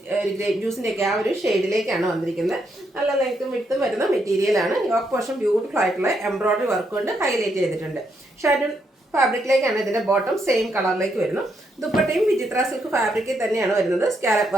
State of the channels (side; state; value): both; normal; correlation 0.78